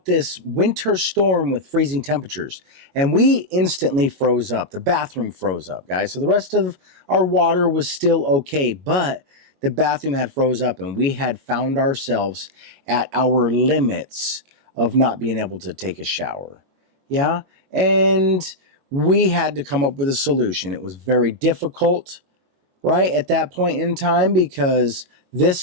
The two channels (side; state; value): left; late; 22 ms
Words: this winter storm with freezing temperatures, and we instantly froze up. The bathroom froze up, guys. So the rest of our water was still okay, but the bathroom had froze up, and we had found ourselves at our limits of not being able to take a shower. Yeah, and we had to come up with a solution. It was very difficult, right, at that point in time, because